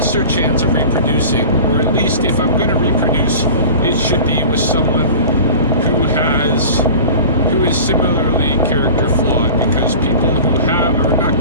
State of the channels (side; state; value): both; inverted; correlation -0.38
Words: chance of reproducing, or at least if I'm going to reproduce, it should be with someone who is similarly character flawed, because people who are not